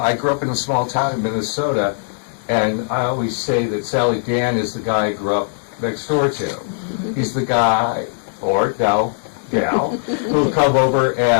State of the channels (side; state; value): right; silent; digital silence